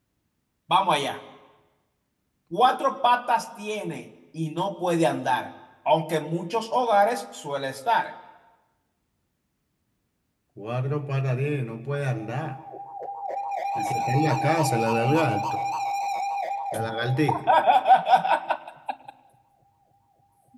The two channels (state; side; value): identical; both; correlation 1.00